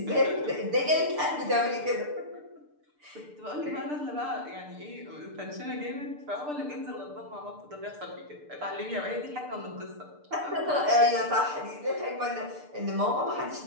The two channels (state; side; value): late; left; 6.7 ms